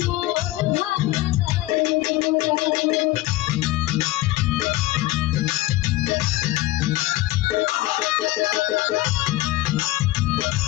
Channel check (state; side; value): quieter; right; 17.4 dB